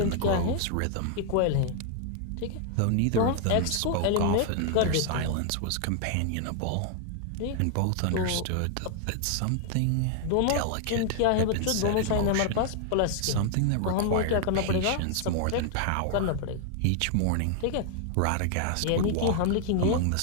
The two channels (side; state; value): both; different; correlation 0.00